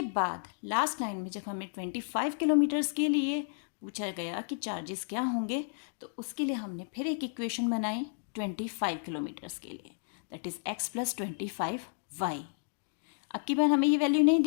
बाद लास्ट लाइन में जब हमें 25 किलोमीटर्स के लिए पूछा गया कि चार्जेस क्या होंगे तो उसके लिए हमने फिर एक इक्वेशन बनाई 25 किलोमीटर्स के लिए, दैट इज़ x + 25y। अब की बार हमें ये वैल्यू नहीं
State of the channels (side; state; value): right; silent; digital silence